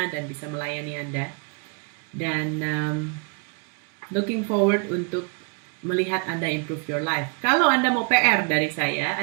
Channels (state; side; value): quieter; left; 37.1 dB